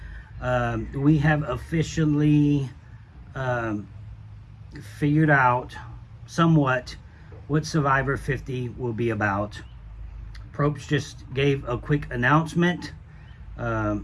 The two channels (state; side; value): identical; both; correlation 1.00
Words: We have officially figured out somewhat what Survivor 50 will be about. Probst just gave a quick announcement. I